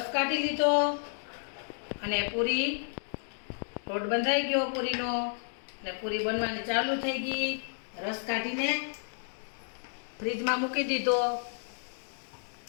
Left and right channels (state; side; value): silent; right; digital silence